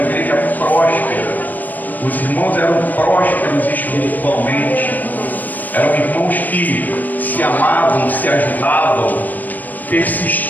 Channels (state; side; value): late; right; 0.085 ms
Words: próspera. Os irmãos eram prósperos espiritualmente. Eram irmãos que se amavam, se ajudavam,